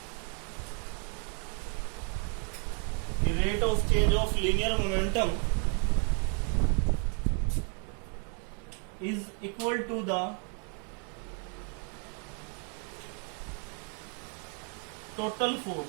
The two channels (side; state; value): left; quieter; 39.8 dB